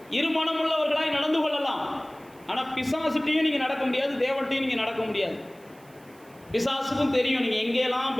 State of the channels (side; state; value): right; noise; hiss, 28 dB below the sound